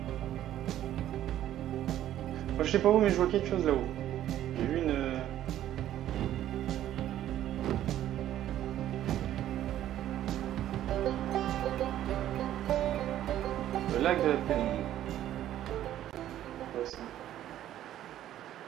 Moi, je sais pas où, mais je vois quelque chose là-haut. J'ai vu une. Le lac de la pénombre. Ouais, ça.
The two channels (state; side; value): quieter; left; 12.3 dB